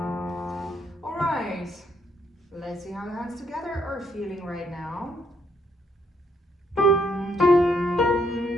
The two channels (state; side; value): normal; both; correlation 0.72